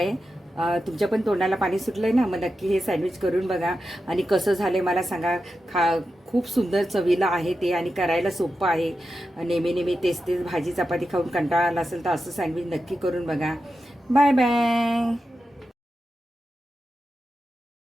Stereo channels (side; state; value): both; normal; correlation 0.90